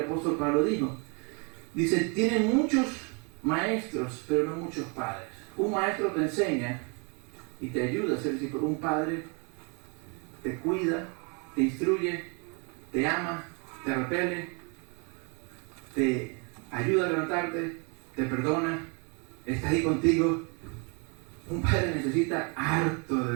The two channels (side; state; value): left; quieter; 34.3 dB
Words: apóstol Pablo dijo. Dice, tienen muchos maestros, pero no muchos padres. Un maestro te enseña y te ayuda a ser discípulo. Un padre te cuida, te instruye, te ama, te repele, te ayuda a levantarte, te perdona, está ahí contigo. Un padre necesita harto